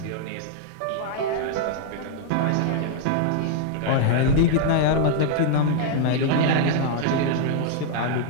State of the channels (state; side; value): different; both; correlation 0.00